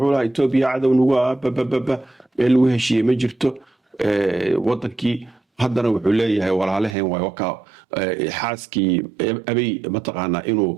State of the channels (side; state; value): left; drops out; at 7.0 s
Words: lahaa Itoobiya cadow nagu bababa meel lagu heshiiyey ma jirto wadankii haddana wuxuu leeyahay walaalaheen way waka xaaskii abay mataqaana inuu